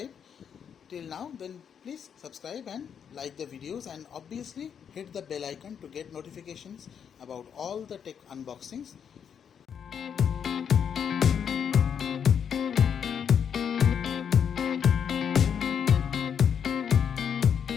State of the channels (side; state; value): right; quieter; 7.8 dB